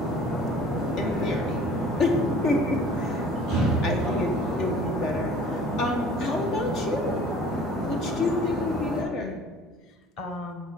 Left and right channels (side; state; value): both; normal; correlation 0.50